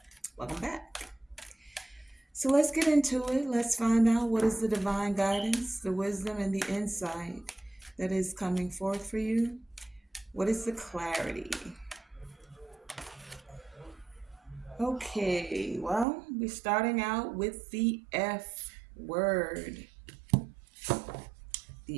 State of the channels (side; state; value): left; drops out; at 16.1 s